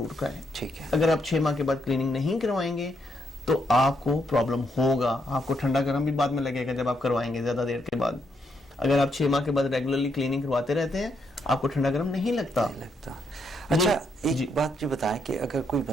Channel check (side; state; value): both; normal; correlation 0.77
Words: کرائیں. ٹھیک ہے. اگر آپ 6 ماہ کے بعد کلیننگ نہیں کروائیں گے تو آپ کو پرابلم ہوگا. آپ کو ٹھنڈا گرم بھی بعد میں لگے گا جب آپ کروائیں گے زیادہ دیر کے بعد. اگر آپ 6 ماہ کے بعد ریگولرلی کلیننگ کرواتے رہتے ہیں آپ کو ٹھنڈا گرم نہیں لگتا. اچھا ایک بات جو بتائیں کہ اگر کوئی